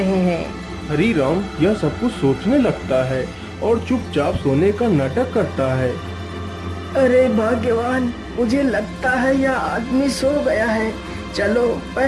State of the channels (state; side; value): identical; both; correlation 1.00